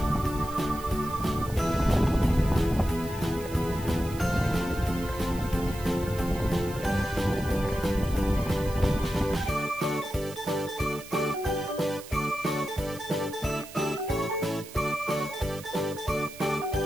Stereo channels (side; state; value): right; noise; hiss, 16 dB below the sound